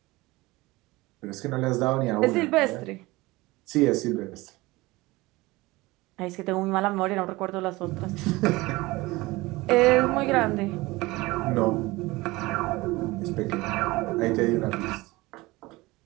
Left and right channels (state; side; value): quieter; left; 21.0 dB